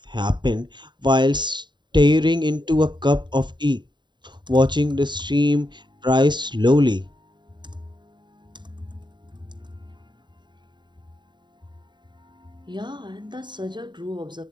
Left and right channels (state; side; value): late; left; 0.22 ms